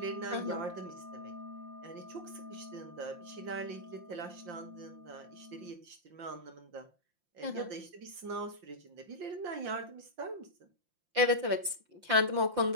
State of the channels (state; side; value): late; left; 5.7 ms